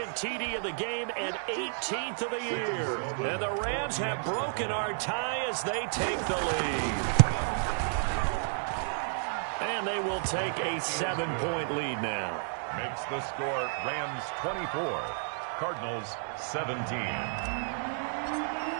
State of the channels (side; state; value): left; silent; 57 dB below the other